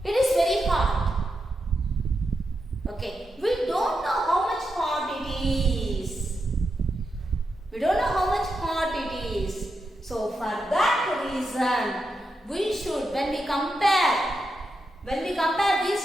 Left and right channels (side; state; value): both; normal; correlation 0.86